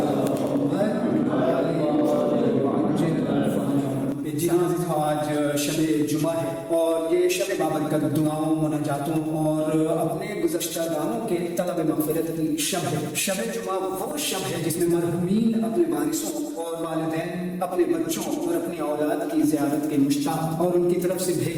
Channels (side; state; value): both; identical; correlation 1.00